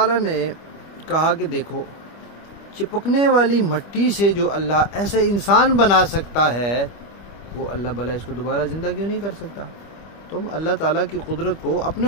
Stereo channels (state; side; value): late; right; 25 ms